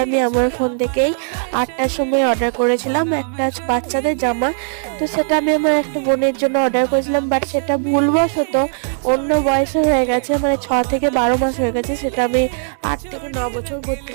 আমি আমার ফোন থেকেই 8টার সময় অর্ডার করেছিলাম একটা বাচ্চাদের জামা। তো সেটা আমি আমার একটা বোনের জন্য অর্ডার করেছিলাম, বাট সেটা ভুলবশত অন্য বয়সে হয়ে গেছে, মানে 6 থেকে 12 মাস হয়ে গেছে। সেটা আমি 8 থেকে 9 বছর করতে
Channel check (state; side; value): silent; left; 67 dB below the other